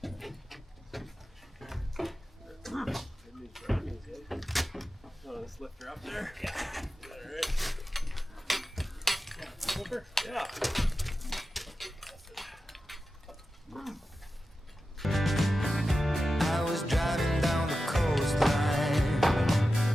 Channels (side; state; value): both; normal; correlation 0.92